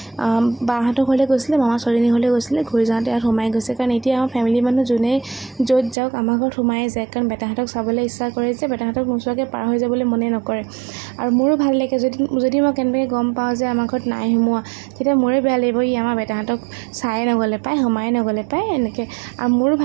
বাহঁতৰ ঘৰলৈ গৈছিলে মামা ছোৱালীজনীৰ ঘৰলৈ গৈছিলে ঘূৰি যাওঁতে ইয়াত সোমাই গৈছে কাৰণ এতিয়া আমাৰ ফেমিলি মানুহ যোনে য'ত যাওক আমাৰ ঘৰত সোমাই যায় কাৰণ বেটাহঁতক চাবলৈ ইচ্ছা কৰে যে বেটাহঁতক নোচোৱাকৈ পাৰ হৈ যাবলৈ মনে নকৰে আৰু মোৰো ভাল লাগে যদি মই কেনেকৈ গম পাওঁ যে আমাৰ ঘৰত নাই সোমোৱা তেতিয়া মোৰে বেয়া লাগিব ই আমাৰ বেটাহঁতক চাই নগ'লে পায় সোমাই নগ'লে পায় এনেকৈ আৰু মোৰো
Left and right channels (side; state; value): left; drops out; at 6.0 s